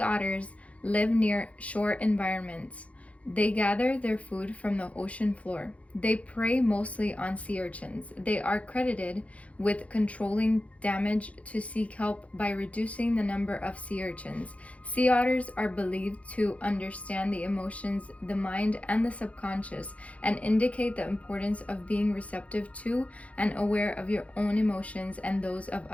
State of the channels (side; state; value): right; late; 0.065 ms